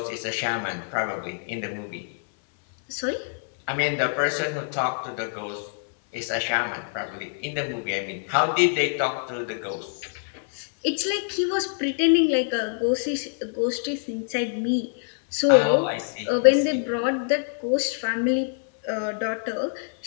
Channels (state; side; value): silent; right; 61 dB below the other